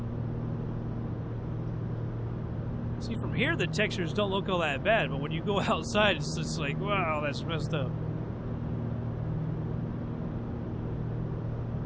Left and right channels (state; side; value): identical; both; correlation 1.00